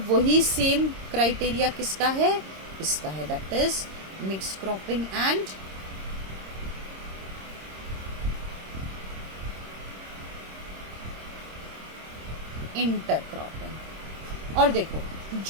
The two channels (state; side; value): late; left; 26 ms